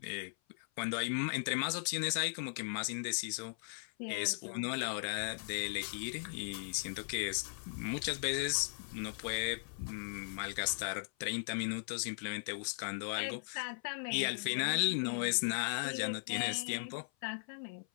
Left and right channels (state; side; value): silent; right; 53 dB below the other